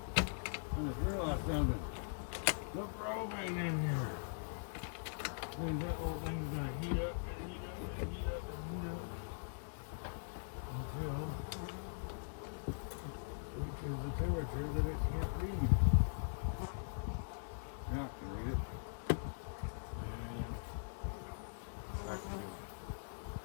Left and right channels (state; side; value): silent; right; digital silence